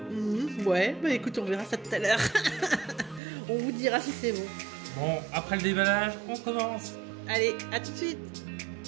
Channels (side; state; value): left; drops out; at 3.2 s